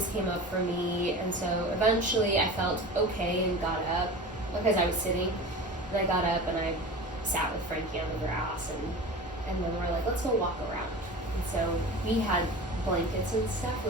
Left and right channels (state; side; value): normal; both; correlation 0.34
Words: came up for me. And so eventually I felt okay and got up, because I was sitting, and I got up and I sat with Frankie on the grass, and then we're like, let's go walk around. And so we had blankets and stuff,